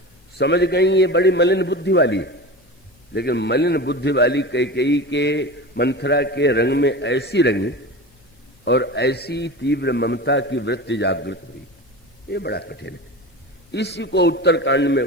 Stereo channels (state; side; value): normal; both; correlation 0.30